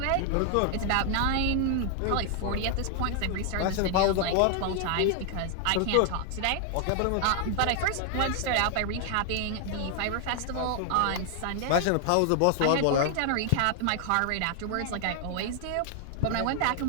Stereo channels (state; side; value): different; both; correlation 0.00